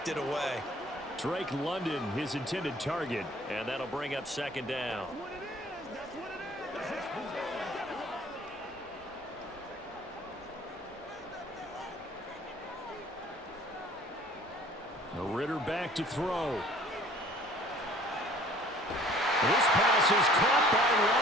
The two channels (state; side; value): normal; both; correlation 0.53